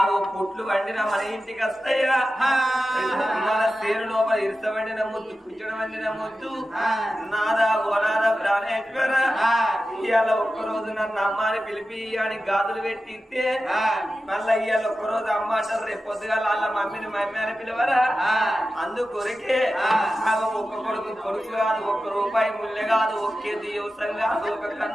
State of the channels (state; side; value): normal; both; correlation 0.93